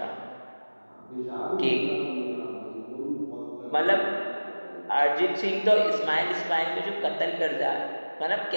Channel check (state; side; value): inverted; both; correlation -1.00